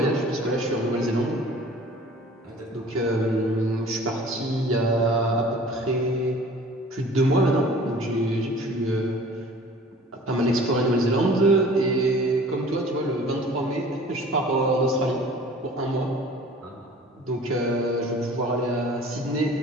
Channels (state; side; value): normal; both; correlation 0.47